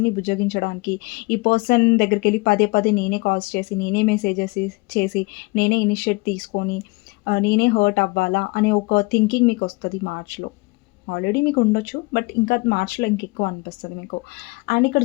బుజ్జగించడానికి ఈ పర్సన్ దగ్గరికెళ్ళి పదే పదే నేనే కాల్స్ చేసి, నేనే మెసేజెస్ చేసి, నేనే ఇనిషియేట్ తీసుకొని, నేనే హర్ట్ అవ్వాలా అనే ఒక థింకింగ్ మీకొస్తది మార్చ్‌లో. ఆల్రెడీ మీకుండొచ్చు. బట్ ఇంకా మార్చ్‌లో ఇంకెక్కువ అనిపిస్తది మీకు. అండ్ ఇక్కడ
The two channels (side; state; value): right; quieter; 25.4 dB